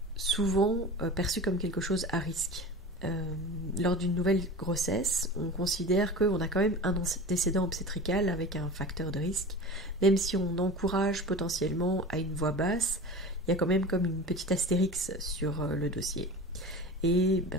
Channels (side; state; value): both; normal; correlation 0.34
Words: souvent perçu comme quelque chose à risque. Lors d'une nouvelle grossesse, on considère qu'on a quand même un antécédent obstétrical avec un facteur de risque. Même si on encourage potentiellement à une voix basse, il y a quand même comme une petite astérix sur le dossier. Et